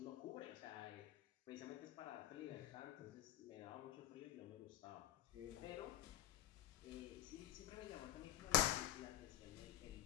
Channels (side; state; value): right; quieter; 13.5 dB